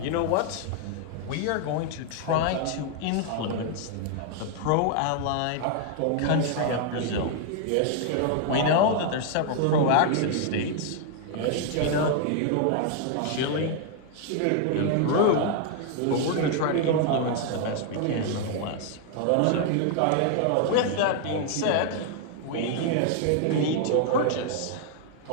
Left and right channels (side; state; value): both; different; correlation 0.00